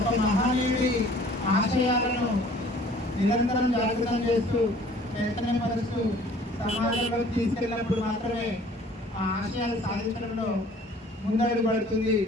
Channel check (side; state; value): both; normal; correlation 0.52